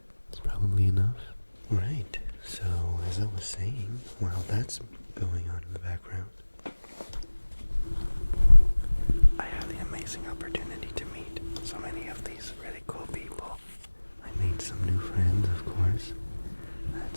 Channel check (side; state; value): both; inverted; correlation -1.00